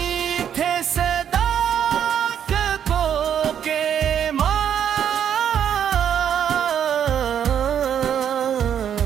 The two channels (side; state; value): left; quieter; 9.0 dB